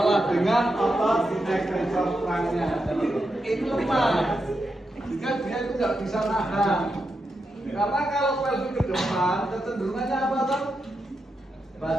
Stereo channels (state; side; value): normal; both; correlation 0.86